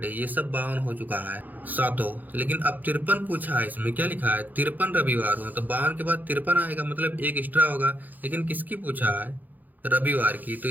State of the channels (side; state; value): left; late; 0.084 ms